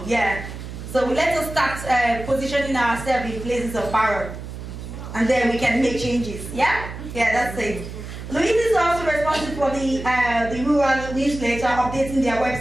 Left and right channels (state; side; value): noise; right; hum, 10 dB below the sound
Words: yeah. So let us start positioning ourselves in places of power. And then we can make changes, yeah? Yeah, that's it. Louise is also responsible for the rural newsletter, updating their